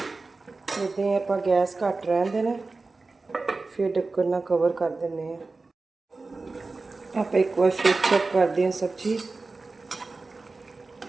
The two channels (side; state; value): left; quieter; 3.7 dB